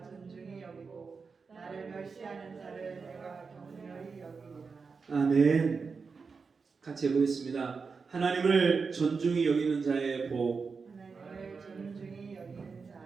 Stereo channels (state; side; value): quieter; left; 5.0 dB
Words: 존중히 여기고 나를 멸시하는 자를 내가 경멸히 여기리라. 아멘. 같이 해보겠습니다. 하나님을 존중히 여기는 자의 복. 하나님을 존중히 여기는